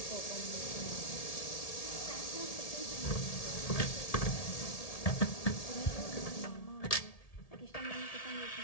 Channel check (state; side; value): late; right; 1.8 ms